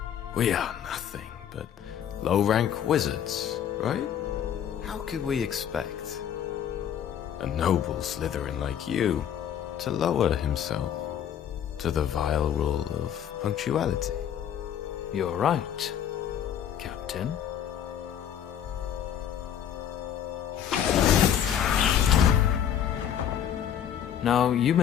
We are nothing but low-rank wizards, right? How could we expect a noble Slytherin like you to lower himself to the vile rule of punctuality? You're right, Captain. Now, you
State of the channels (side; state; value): right; quieter; 9.5 dB